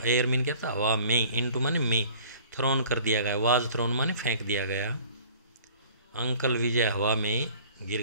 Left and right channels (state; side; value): inverted; both; correlation -0.49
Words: एयर मीन क्या था, हवा में, इनटू माने में, थ्रोन कर दिया गया, वाज थ्रोन माने फेंक दिया गया। अंकल विजय हवा में गिर